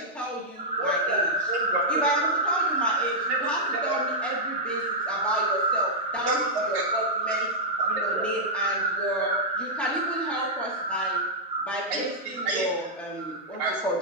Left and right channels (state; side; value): normal; both; correlation -0.07